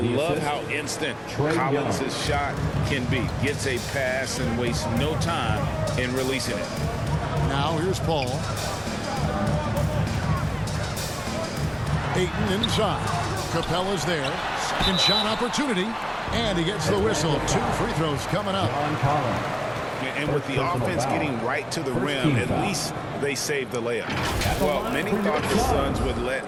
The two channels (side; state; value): both; identical; correlation 1.00